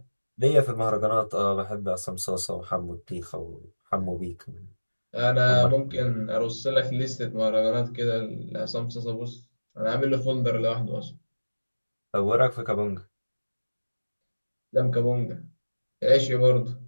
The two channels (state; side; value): inverted; both; correlation -1.00